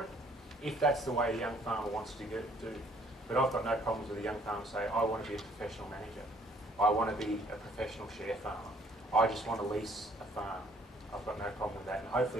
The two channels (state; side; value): normal; both; correlation 0.62